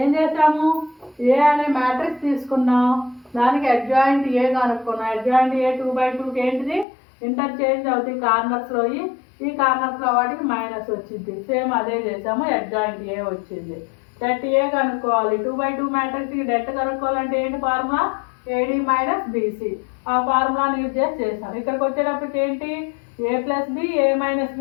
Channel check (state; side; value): drops out; right; at 6.9 s